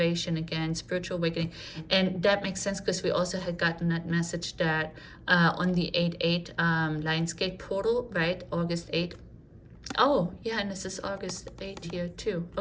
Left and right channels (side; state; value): both; identical; correlation 1.00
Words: again, spiritual awakening. And that makes sense because we also had gotten that message that on the 8/8 Lionsgate portal, right? August 8th. Oh, yeah, and this is August 8th here too.